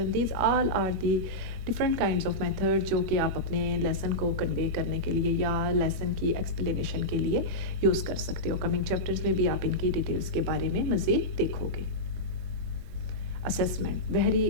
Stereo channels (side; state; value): left; late; 22 ms